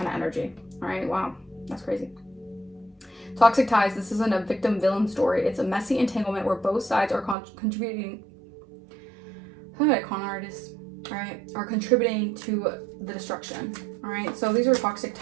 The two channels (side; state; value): left; drops out; at 7.4 s